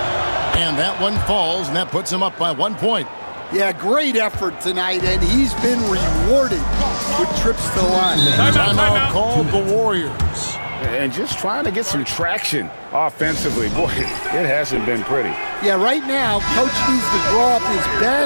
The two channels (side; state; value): both; inverted; correlation -1.00